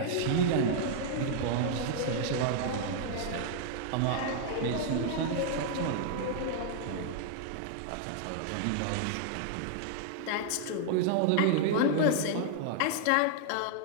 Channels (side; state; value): both; different; correlation -0.01